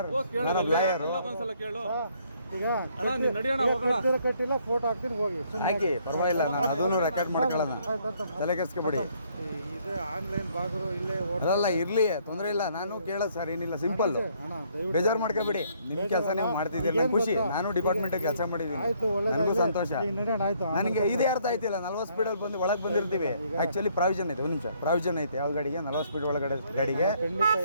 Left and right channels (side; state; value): both; inverted; correlation -0.66